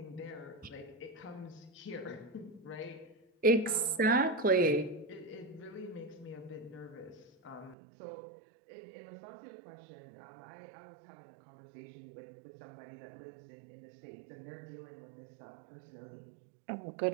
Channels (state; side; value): drops out; left; at 7.8 s